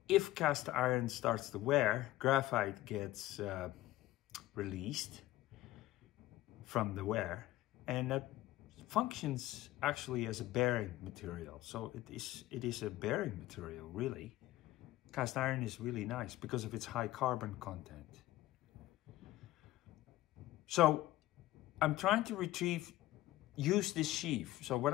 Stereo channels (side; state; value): right; quieter; 16.0 dB